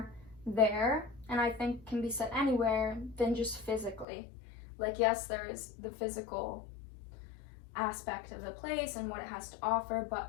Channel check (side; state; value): right; drops out; at 4.0 s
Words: there, and I think can be said anywhere than just physically. Like, yes, there is the physical aspect of the place and what it has to offer, but